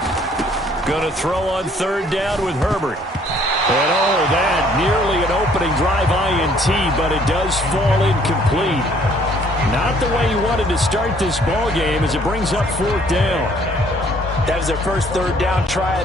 Going to throw on 3rd down with Herbert. And oh, that nearly an opening drive INT, but it does fall incomplete. Not the way he wanted to start this ball game as it brings up 4th down. That was their first 3rd down try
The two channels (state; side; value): normal; both; correlation 0.61